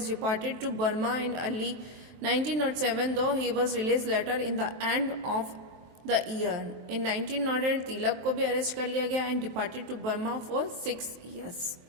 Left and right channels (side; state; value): left; late; 23 ms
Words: deported to Burma in early 1907, though he was released later in the end of the year. In 1908, Tilak को भी arrest कर लिया गया and deported to Burma for 6 years.